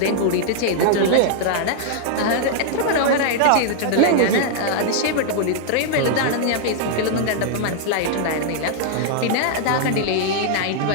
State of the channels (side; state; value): both; different; correlation -0.01